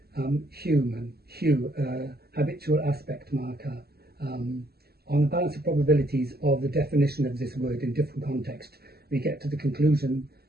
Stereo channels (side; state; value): left; late; 0.46 ms